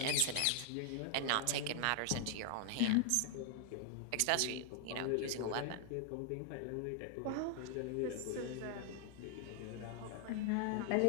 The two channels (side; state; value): both; different; correlation 0.00